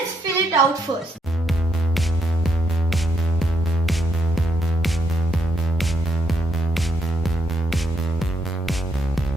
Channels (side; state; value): both; normal; correlation 0.77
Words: fill it out first.